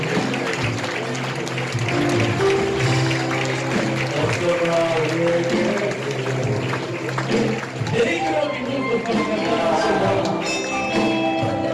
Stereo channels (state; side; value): identical; both; correlation 1.00